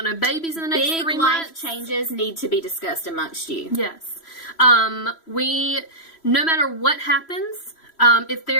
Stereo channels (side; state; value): right; late; 3.0 ms